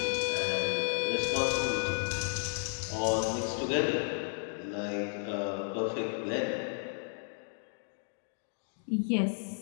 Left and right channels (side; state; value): right; silent; 56 dB below the other